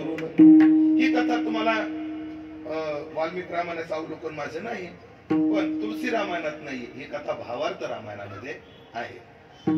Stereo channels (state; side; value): identical; both; correlation 1.00